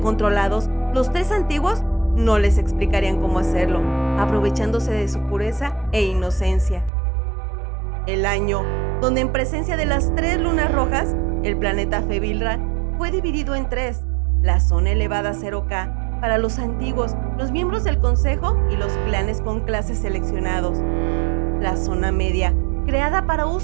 los tres antiguos no les explicarían cómo hacerlo, aprovechándose de su pureza e inocencia. El año donde en presencia de las tres lunas rojas, el planeta Febilra fue dividido en tres: la zona elevada 0K para los antiguos, los miembros del consejo y los clanes con clases seleccionados; la zona media, creada para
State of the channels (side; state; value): left; drops out; at 6.9 s